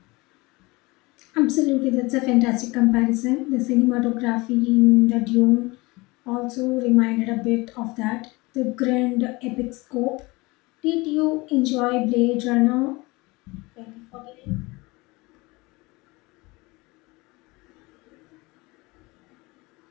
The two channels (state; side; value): quieter; right; 23.5 dB